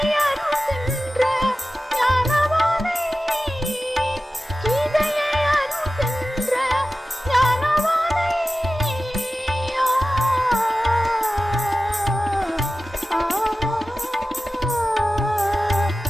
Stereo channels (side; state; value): both; normal; correlation 0.95